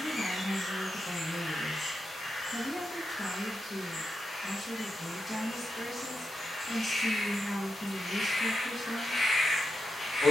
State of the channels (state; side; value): normal; both; correlation 0.87